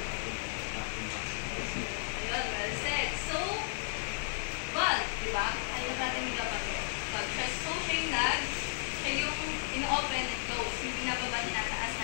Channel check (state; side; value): silent; right; digital silence